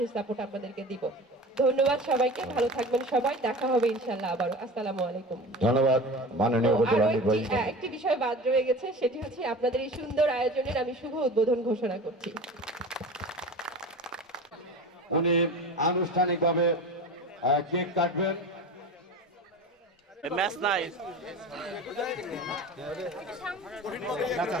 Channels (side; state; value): both; normal; correlation 0.34